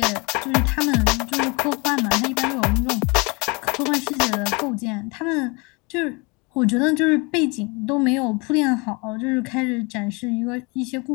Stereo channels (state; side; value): quieter; right; 28.8 dB